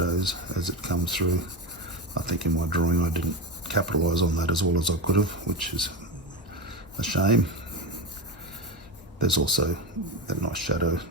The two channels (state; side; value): normal; both; correlation 0.19